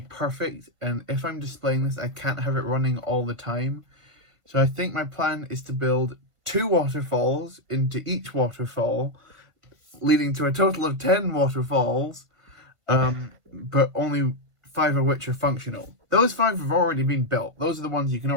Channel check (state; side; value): late; left; 1.5 ms